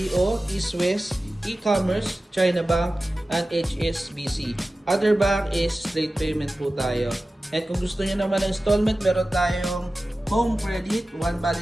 East West, E-commerce, China Bank, and HSBC. Other bank is straight payment po tayo. At kung gusto niyo naman ng installment, meron tayong home credit. One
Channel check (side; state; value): both; normal; correlation 0.95